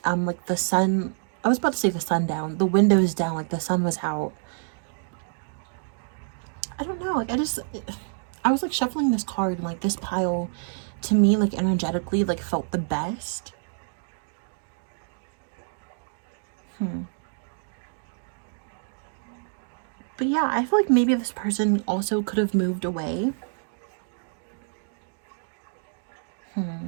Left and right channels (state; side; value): silent; left; digital silence